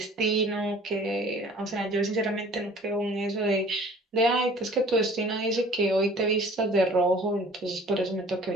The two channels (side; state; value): both; normal; correlation 0.50